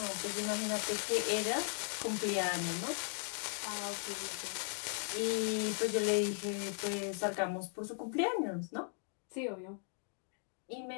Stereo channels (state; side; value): silent; right; 53 dB below the other